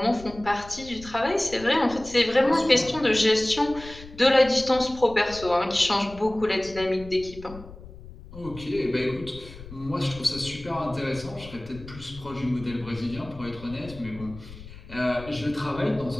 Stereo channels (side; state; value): left; noise; rumble, 16 dB below the sound